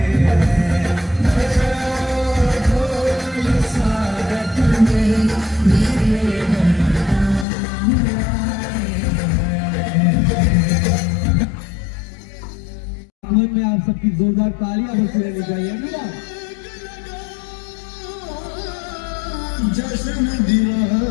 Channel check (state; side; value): drops out; right; at 7.5 s